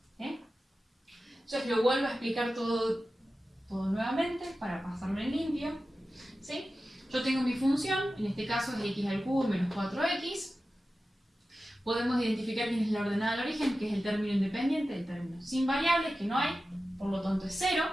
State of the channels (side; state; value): both; normal; correlation 0.94